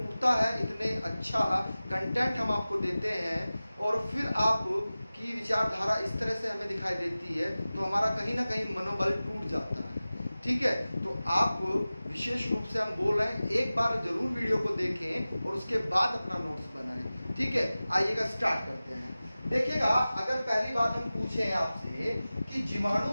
है, इतने अच्छा कंटेंट हम आपको देते हैं और फिर आप की विचारधारा इस तरह से हमें दिखाई देती है तो हमारा कहीं ना कहीं मनोबल टूट जाता है, ठीक है। तो आप विशेष रूप से हम बोल रहे हैं, एक बार जरूर वीडियो को देखें और उसके बाद अपना नोट्स बनाएं, ठीक है। आइएगा स्टार्ट करते हैं। देखिएगा, अगर पहली बात हम पूछें आपसे कि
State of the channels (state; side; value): inverted; both; correlation -0.97